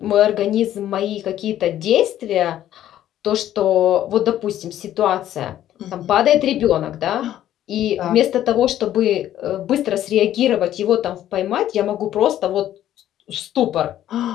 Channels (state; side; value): quieter; right; 12.1 dB